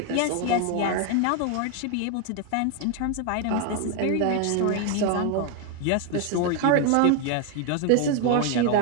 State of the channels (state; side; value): different; both; correlation 0.01